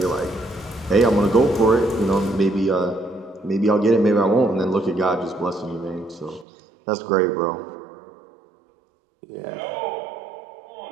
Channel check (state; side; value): drops out; left; at 6.5 s